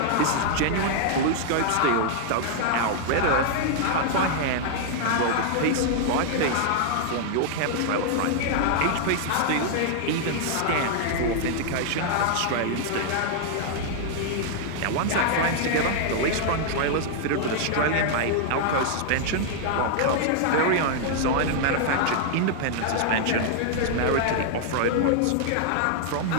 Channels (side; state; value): both; different; correlation -0.01